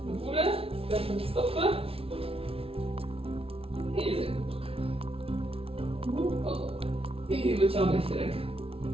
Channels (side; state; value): left; late; 0.27 ms